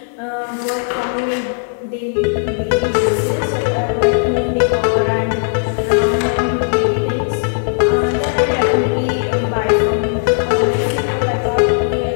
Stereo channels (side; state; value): right; silent; digital silence